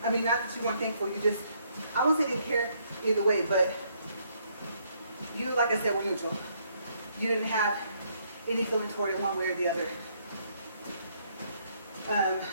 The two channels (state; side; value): inverted; both; correlation -0.70